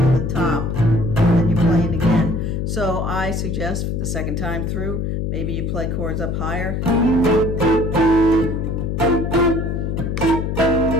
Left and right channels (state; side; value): noise; left; hum, 1 dB below the sound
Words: the top. And you play it again. So I suggest for the second time through, maybe you play chords up higher.